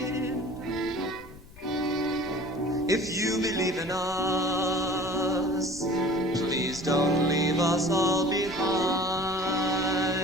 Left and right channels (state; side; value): noise; left; rumble, 20 dB below the sound